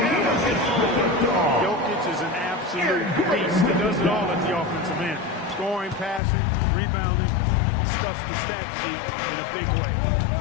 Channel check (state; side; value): drops out; right; at 6.2 s